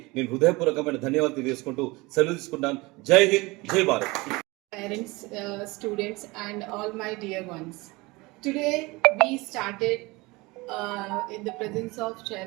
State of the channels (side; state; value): left; quieter; 23.4 dB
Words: నేను హృదయపూర్వకమైన ధన్యవాదాలు తెలియజేసుకుంటూ సెలవు తీసుకుంటాను. జై హింద్, జై Bharat. Parents, students, and all my dear ones. Today we started in the presence of